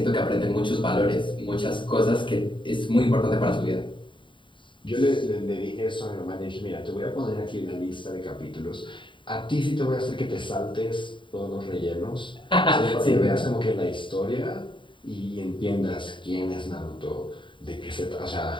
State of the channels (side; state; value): right; late; 0.24 ms